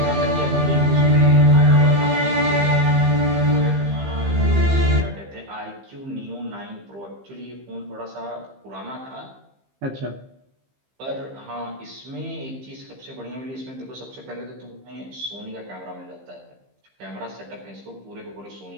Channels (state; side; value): late; left; 15 ms